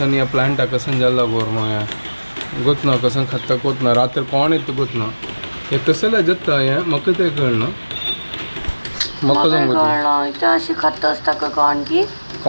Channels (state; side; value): inverted; both; correlation -1.00